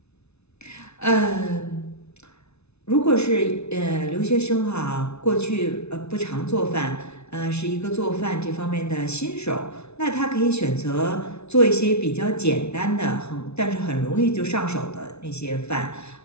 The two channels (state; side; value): late; right; 0.81 ms